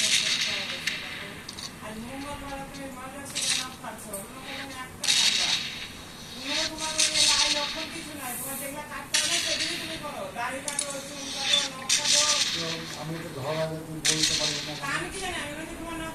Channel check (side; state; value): both; identical; correlation 1.00